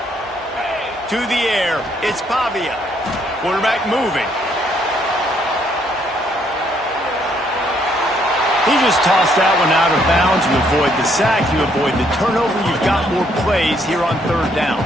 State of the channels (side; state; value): both; normal; correlation 0.70